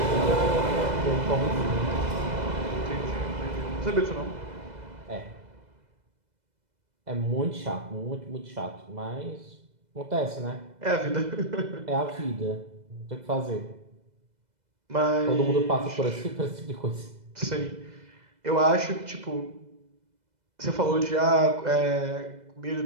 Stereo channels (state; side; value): late; left; 2.0 ms